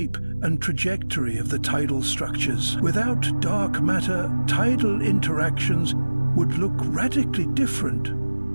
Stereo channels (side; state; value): both; inverted; correlation -1.00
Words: and trajectory of the tidal structures. Without dark matter, tidal interactions would look radically different,